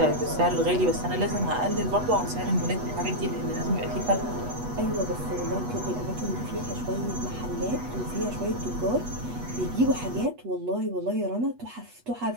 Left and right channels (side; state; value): left; late; 8.2 ms